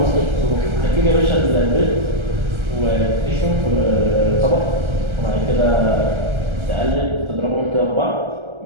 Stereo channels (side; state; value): left; late; 1.3 ms